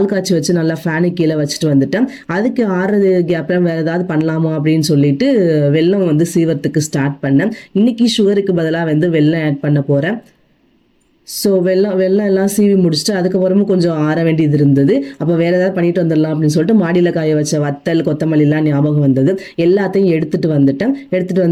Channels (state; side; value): identical; both; correlation 1.00